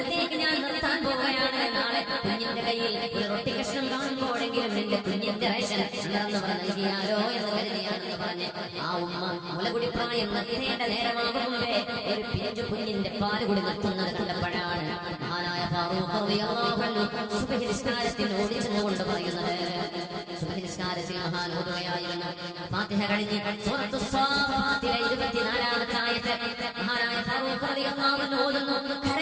ഞാൻ നിർത്താൻ പോവുകയാണ്. നാളെ കുഞ്ഞിന്റെ കയ്യിൽ ഒരു റൊട്ടി കഷ്ണം കാണുമ്പോഴെങ്കിലും എന്റെ കുഞ്ഞിന്റെ റേഷൻ വളർന്നവർ നൽകിയാലോ എന്ന് കരുതിയാണെന്ന് പറഞ്ഞ് ആ ഉമ്മ മുലകുടി പ്രായം നിർത്തേണ്ട നേരമാകും മുമ്പേ ഒരു പിഞ്ചു കുഞ്ഞിന്റെ പാല് കൂടി നിർത്തുന്നത് കണ്ടപ്പോഴാണ് മഹാനായ ഫാറൂഖ് റളിയല്ലാഹു അൻഹു സുബ്ഹി നിസ്കാരത്തിൽ ഓടിച്ചെന്നുകൊണ്ട് പറയുന്നത്. സുബ്ഹി നിസ്കാരത്തിൽ മഹാൻ ഓതുകയായിരുന്നു. ഫാത്തിഹ കഴിഞ്ഞ് സൂറത്തുസ് സാഫാത്തിലെ 24-ാമത്തെ ആയത്ത് മഹാനായ ഫാറൂഖ് റളിയല്ലാഹു അൻഹു ഓതുന്നു,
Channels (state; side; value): identical; both; correlation 1.00